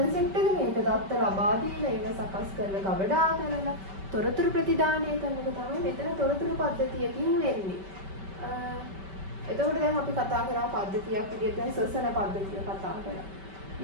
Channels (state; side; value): late; left; 5.2 ms